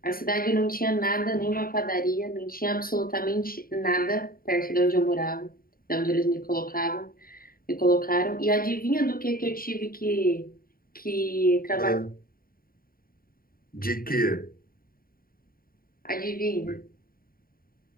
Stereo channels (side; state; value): right; late; 0.42 ms